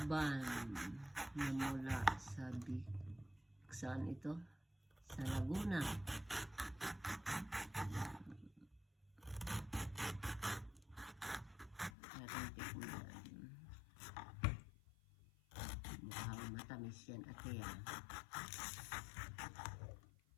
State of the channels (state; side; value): drops out; right; at 11.9 s